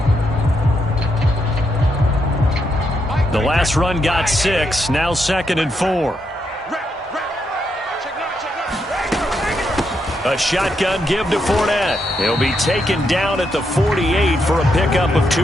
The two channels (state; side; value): normal; both; correlation 0.80